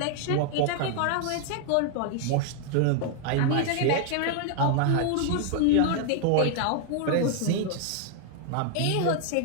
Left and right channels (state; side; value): different; both; correlation 0.00